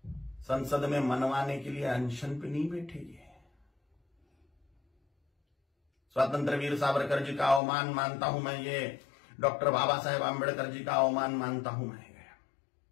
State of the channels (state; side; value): drops out; right; at 7.6 s